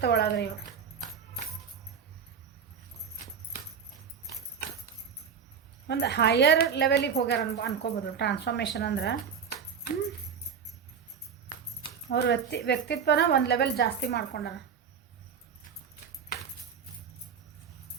ಒಳಗೆ. ನೀವು ಒಂದು ಹೈಯರ್ ಲೆವೆಲಿಗೆ ಹೋಗ್ಯಾರ ಅನ್ಕೋಬೋದು. ಟ್ರಾನ್ಸ್ಫಾರ್ಮೇಷನ್ ಅಂದ್ರೆ ಅವ್ರ ವ್ಯಕ್ತಿತ್ವನ ಒಂದು ಲೆವೆಲ್ ಜಾಸ್ತಿ ಮಾಡ್ಕೊಂಡಾರ.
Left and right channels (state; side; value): quieter; left; 6.9 dB